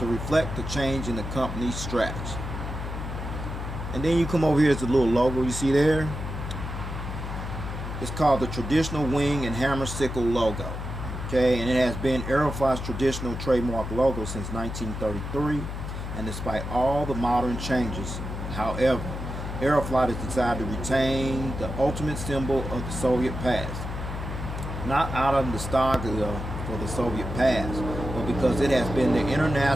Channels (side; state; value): left; noise; hum, 6 dB below the sound